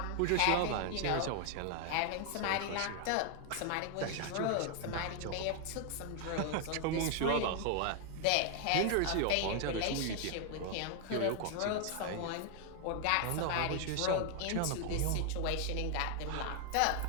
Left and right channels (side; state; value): both; different; correlation 0.00